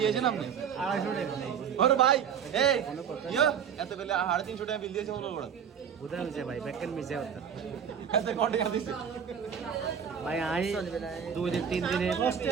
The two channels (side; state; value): left; quieter; 7.8 dB